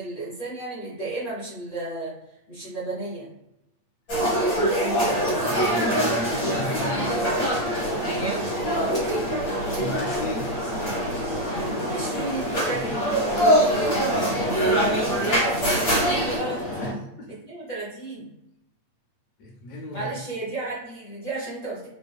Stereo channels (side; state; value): right; late; 8.6 ms